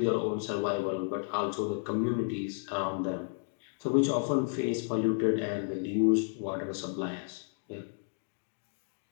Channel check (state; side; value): silent; right; 56 dB below the other